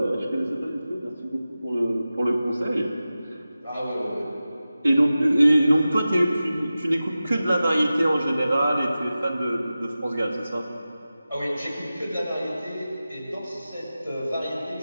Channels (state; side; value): inverted; both; correlation -0.95